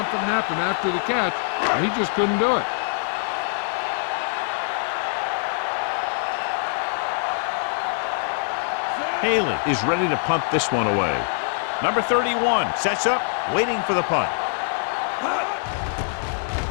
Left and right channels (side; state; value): right; silent; 63 dB below the other